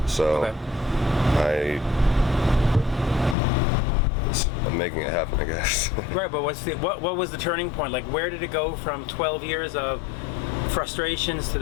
So I'm making it happen, I guess. Right, but what was the turning point? Like, where did it go from 12 years of frustrations to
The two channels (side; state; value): right; drops out; at 3.4 s